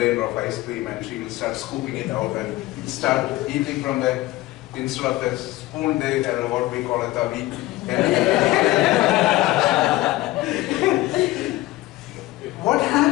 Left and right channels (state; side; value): quieter; right; 17.9 dB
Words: of ice cream and she will start scooping it out and start eating from the, instead of the spoon, they have what we call a tavi. What